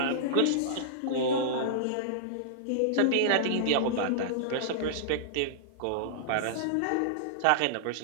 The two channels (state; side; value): different; both; correlation -0.02